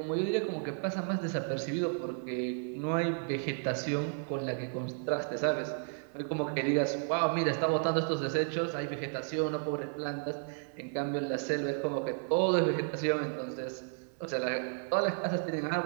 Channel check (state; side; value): silent; left; 56 dB below the other